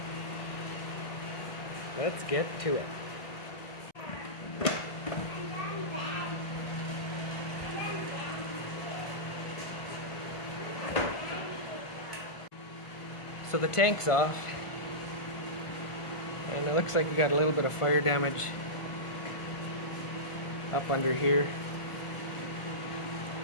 Let's get to it. So the tank's off, and it looks like we got a little bit of fire damage up under here,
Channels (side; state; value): right; late; 1.5 ms